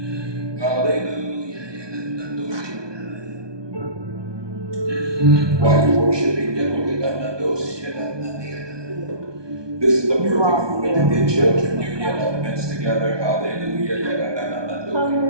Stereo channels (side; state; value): left; late; 1.2 ms